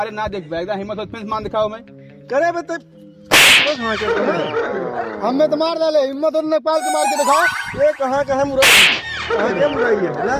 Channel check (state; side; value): identical; both; correlation 1.00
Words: ना देख एकदम हिम्मत हो तो फिर मार दिखाओ। मैं करे बे तब हमें तो मार डाले, हिम्मत और नेपाल के मार के दिखाओ। ये कहाँ मुराई, कहाँ क्या मुराई है बोला?